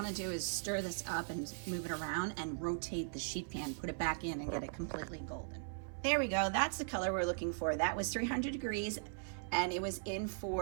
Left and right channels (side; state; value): left; silent; 52 dB below the other